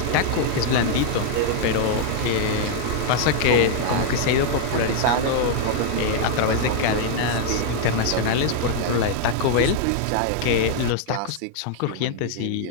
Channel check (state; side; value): different; both; correlation 0.00